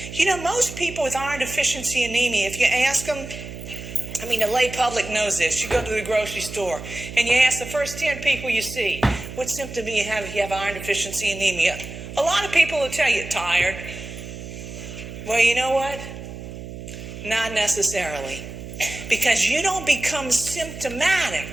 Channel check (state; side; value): noise; right; hum, 11 dB below the sound